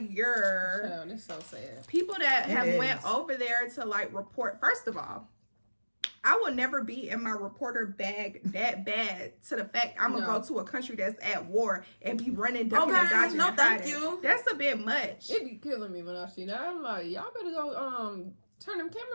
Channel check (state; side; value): inverted; both; correlation -1.00